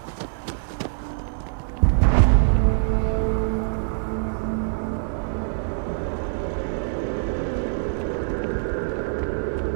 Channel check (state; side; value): silent; left; 58 dB below the other